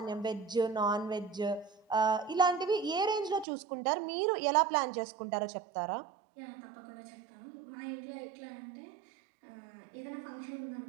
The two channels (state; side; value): drops out; left; at 3.5 s